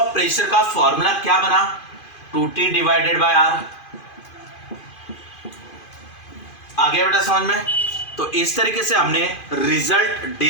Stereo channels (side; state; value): right; late; 2.5 ms